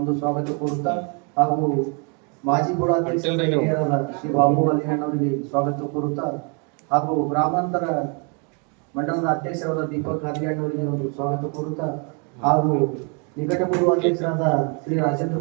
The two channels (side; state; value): left; quieter; 36.4 dB